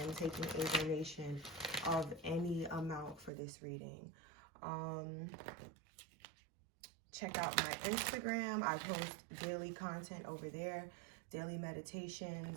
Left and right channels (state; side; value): drops out; left; at 3.3 s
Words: taking a donation of any amount for this reading. Check out my Instagram. I post daily content over there, daily